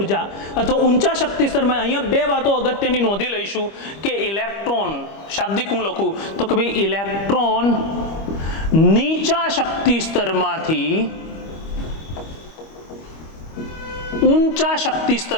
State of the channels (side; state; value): right; late; 25 ms